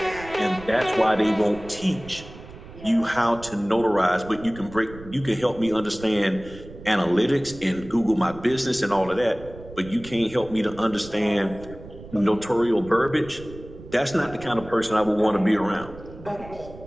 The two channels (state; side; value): noise; right; rumble, 16 dB below the sound